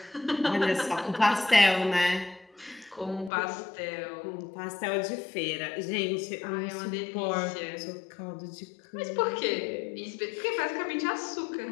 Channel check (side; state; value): right; drops out; at 3.3 s